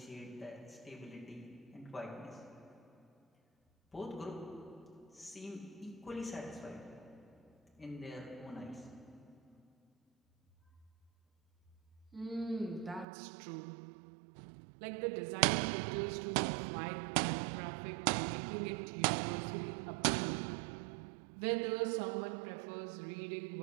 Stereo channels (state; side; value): drops out; left; at 13.1 s